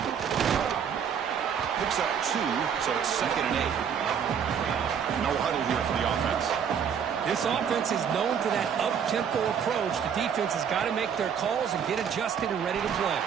Picks up 2, so it's 2nd and 8. No huddle here for the offense. This offense is known for that up-tempo approach. The defense has got to make their calls and get adjusted and ready to play.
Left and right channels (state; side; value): quieter; left; 7.6 dB